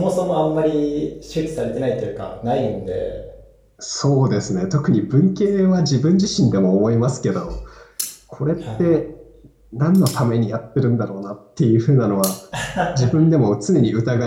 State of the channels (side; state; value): both; identical; correlation 1.00